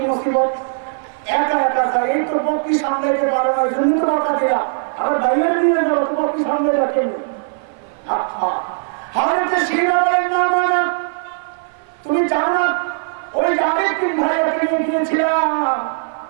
মুসিবত, একা একা যায়, এই তো বকরি সামলাইতে পারো না, ওই জন্য তো বকা দিলাম, আবার ভাইয়ার দিয়ে যাবো তো বকরি সামলে রাখেন। হযরত শিরা বলেন না মানা, তুমি জানো না ওই আরেক 3 ভাইয়াকে নিয়ে গিয়েছিলাম।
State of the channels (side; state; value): left; silent; 57 dB below the other